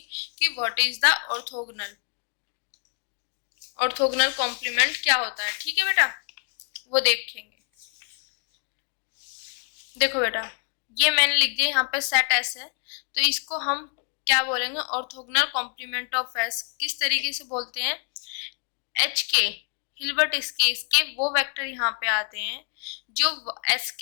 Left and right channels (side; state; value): right; quieter; 37.7 dB